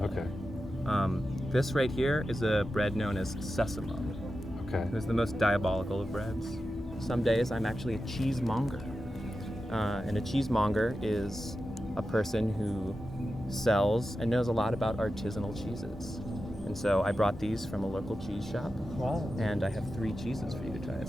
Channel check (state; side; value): normal; both; correlation 0.91